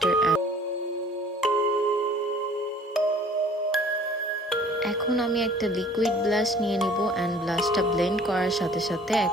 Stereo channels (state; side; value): normal; both; correlation 0.52